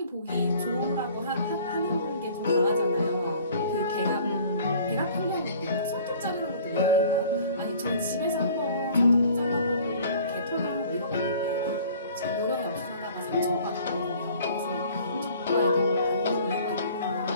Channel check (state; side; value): inverted; both; correlation -0.50